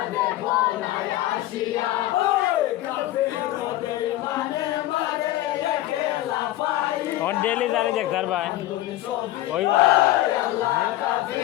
দেখো না আসিয়া और डेली जारी देखता भाई वही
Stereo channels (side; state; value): right; quieter; 15.5 dB